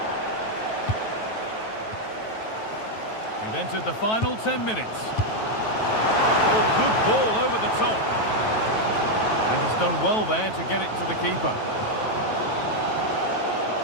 We've entered the final 10 minutes. Oh, good ball over the top. And he's done well there to get it to the keeper.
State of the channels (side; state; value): right; late; 9.2 ms